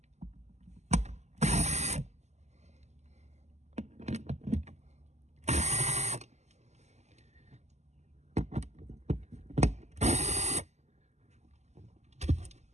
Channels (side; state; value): left; late; 0.33 ms